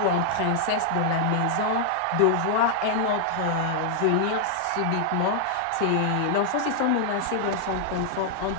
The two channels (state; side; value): different; both; correlation 0.00